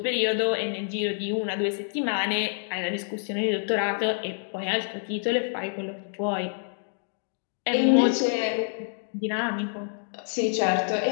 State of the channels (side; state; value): right; silent; digital silence